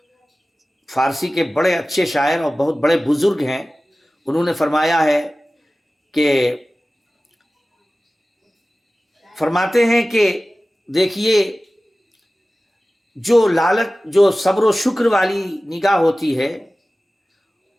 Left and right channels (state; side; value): normal; both; correlation 0.96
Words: فارسی کے بڑے اچھے شاعر اور بہت بڑے بزرگ ہیں، انہوں نے فرمایا ہے کہ فرماتے ہیں کہ دیکھیے، جو صبر و شکر والی نگاہ ہوتی ہے